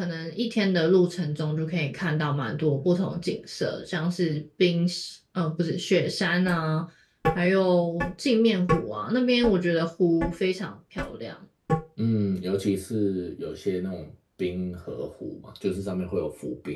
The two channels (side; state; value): both; identical; correlation 1.00